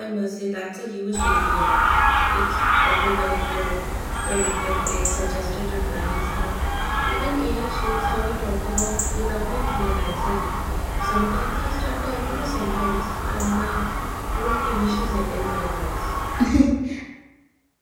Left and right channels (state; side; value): identical; both; correlation 1.00